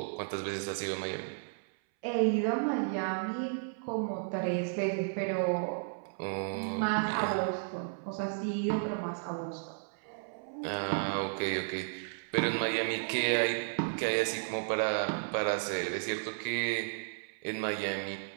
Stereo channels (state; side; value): silent; left; 55 dB below the other